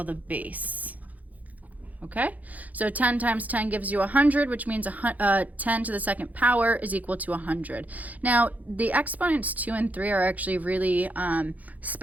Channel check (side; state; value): left; late; 0.078 ms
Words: the base. Okay, so 10 times 10 gives you 100, which means 10 to the second power is equal to 100. Now, the exponents 2 and 3 are actually really